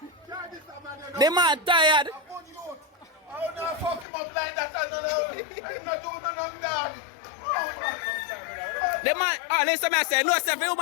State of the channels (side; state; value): right; drops out; at 4.0 s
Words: The man tired. I don't fuck him up like that. I'm not doing nothing, dog. The man, oh, listen, I say, no, sir, the